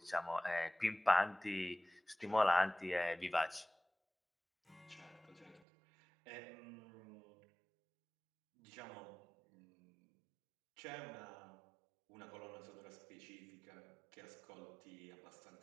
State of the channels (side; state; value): left; drops out; at 5.6 s